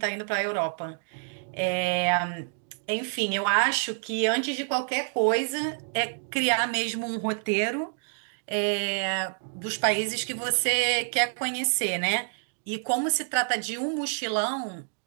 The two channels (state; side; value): silent; left; digital silence